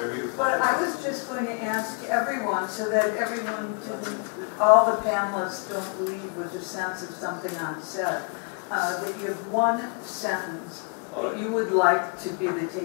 but I was just going to ask everyone so that everyone all the panelists don't leave with the sense of something unsaid, that you have one sentence that you would like to be the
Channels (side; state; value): right; quieter; 37.0 dB